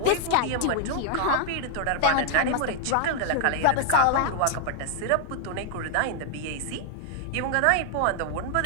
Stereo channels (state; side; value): different; both; correlation 0.00